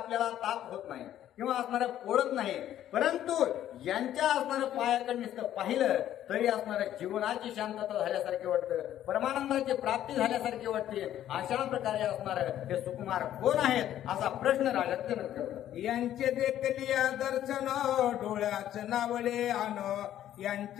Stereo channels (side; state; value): right; quieter; 11.8 dB